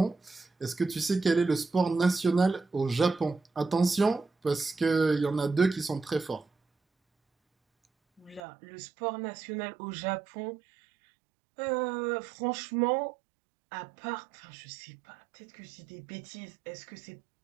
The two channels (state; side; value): drops out; left; at 8.4 s